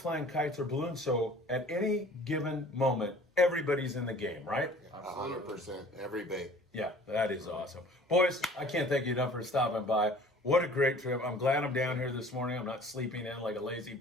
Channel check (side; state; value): both; normal; correlation 0.49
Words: flying kites or balloons, so at any given moment, everybody's in the game, right? 100%. Every bait. Yeah, that is awesome. Boys, I can't thank you enough for stopping by. What a great trip. I'm glad I'm down here this morning. I'm not sleeping in like a lazy